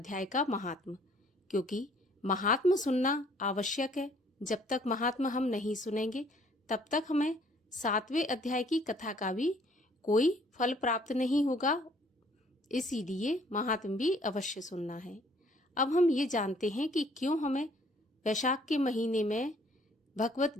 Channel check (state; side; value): normal; both; correlation 0.60